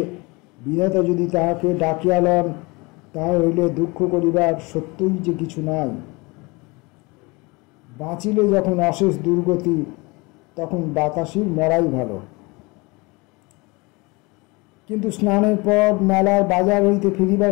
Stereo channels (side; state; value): right; quieter; 25.8 dB